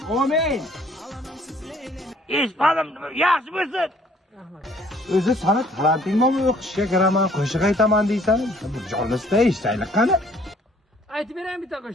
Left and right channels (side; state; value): both; normal; correlation 0.60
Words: Amin. Eshitmadim. Yaxshi bo'lsin. O'zi sana talantingmi o'qishga kiraman, qo'shiq aytaman deysan? Bir jonlisda eshitaylik qani. Aytib beraymi bitta